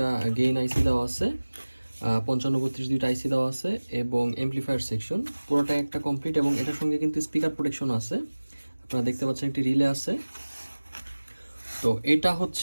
গেইন আইসি দেওয়া আছে, 5532 দুইটা আইসি দেওয়া আছে এবং এমপ্লিফায়ার সেকশন পুরোটাই একটা কমপ্লিট। এবং এটার সঙ্গে কিন্তু স্পিকার প্রোটেকশন আছে। আপনারা দেখতে পাচ্ছেন একটি রিলে আছে। তো এটা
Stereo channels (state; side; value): inverted; both; correlation -1.00